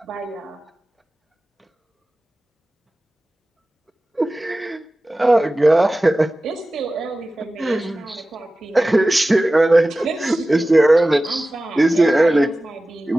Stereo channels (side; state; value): both; normal; correlation 0.96